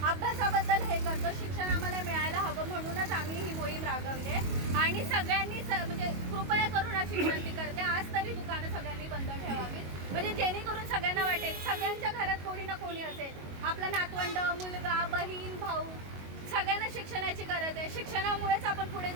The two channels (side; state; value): left; late; 22 ms